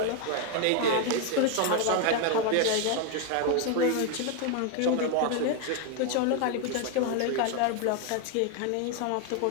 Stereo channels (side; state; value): both; different; correlation 0.01